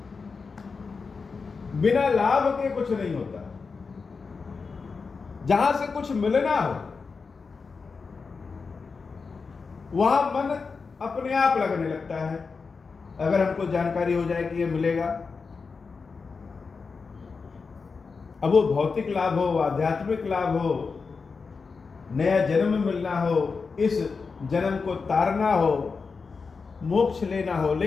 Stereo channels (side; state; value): right; quieter; 4.8 dB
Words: बिना लाभ के कुछ नहीं होता। जहां से कुछ मिलना हो, वहां मन अपने आप लगने लगता है। अगर हमको जानकारी हो जाए कि ये मिलेगा, अब वो भौतिक लाभ हो, आध्यात्मिक लाभ हो, नया जन्म मिलना हो, इस जन्म को तारना हो, मोक्ष लेना हो,